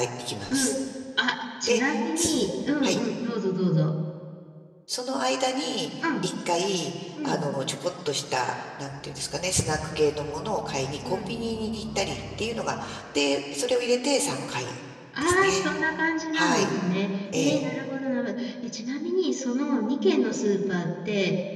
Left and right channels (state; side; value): identical; both; correlation 1.00